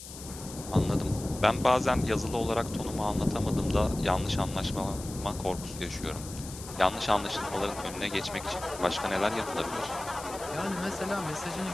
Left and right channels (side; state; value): left; noise; hiss, 13 dB below the sound